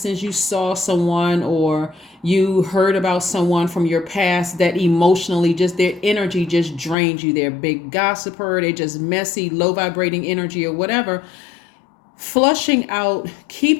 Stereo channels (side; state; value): right; drops out; at 7.0 s